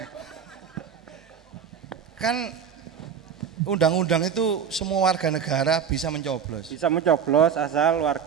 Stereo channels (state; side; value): quieter; left; 7.4 dB